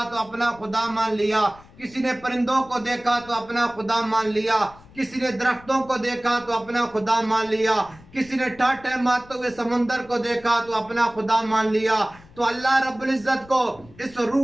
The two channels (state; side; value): noise; left; rumble, 24 dB below the sound